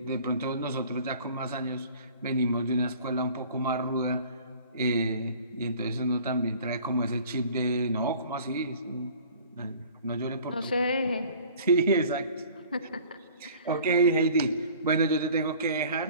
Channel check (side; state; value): both; inverted; correlation -0.49